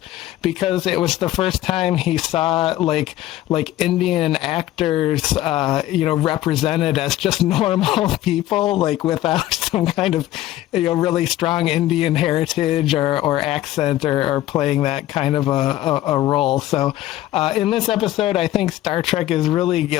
because it was the first time he saw like Indian actors, represented as just normal people, like without some kind of, really strong Indian heritage or accent or playing that kind of a role. So in this episode, I think Star Trek is really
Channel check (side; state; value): right; quieter; 14.5 dB